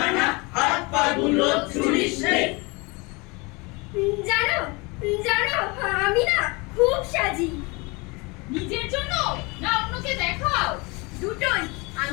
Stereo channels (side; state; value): right; quieter; 27.1 dB